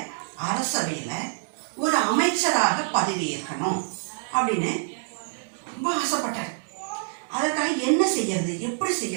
அரசவையில் ஒரு அமைச்சராக பதவியேற்கணும் அப்படின்னு ரொம்ப ஆசைப்பட்டார். அதற்காக என்ன செய்யறது, எப்படி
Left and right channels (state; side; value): silent; left; 61 dB below the other